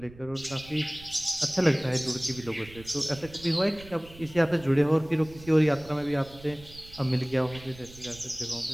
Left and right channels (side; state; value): right; noise; rumble, 19 dB below the sound